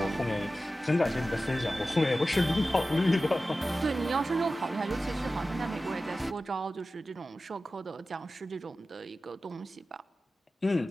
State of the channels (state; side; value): normal; both; correlation 0.95